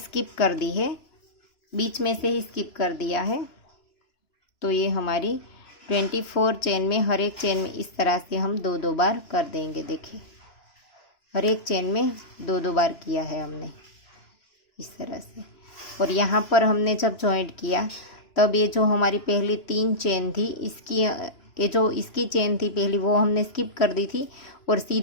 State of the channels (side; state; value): right; late; 2.9 ms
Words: कर दी है, बीच में से ही स्किप कर दिया है। तो ये हमारी 24 चेन में हर एक चेन में इस तरह से हम 2-2 बार कर देंगे। देखिए, हर एक चेन में 2-2 बार किया है हमने इस तरह से। और यहाँ पर हमने जब जॉइंट किया तब ये जो हमारी पहली 3 चेन थी, ये जो इसकी चेन थी पहली, वो हमने स्किप कर दी थी और